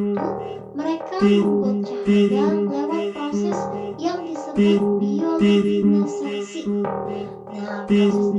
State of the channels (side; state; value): both; identical; correlation 1.00